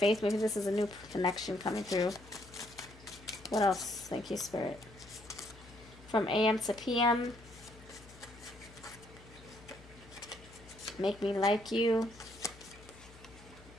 Maybe this is a new connection coming through. What else? Thank you, Spirit. From AM to PM. Make me like you.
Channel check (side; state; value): left; noise; hum, 21 dB below the sound